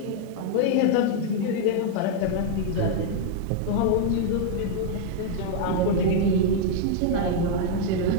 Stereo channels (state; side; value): different; both; correlation -0.01